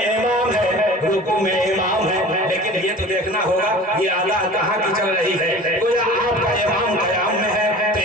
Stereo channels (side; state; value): both; normal; correlation 0.41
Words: امام ہے، رکوع میں امام ہے، لیکن یہ تو دیکھنا ہوگا یہ ادا کہاں کی چل رہی ہے۔ گویا آپ کا امام قیام میں ہے تو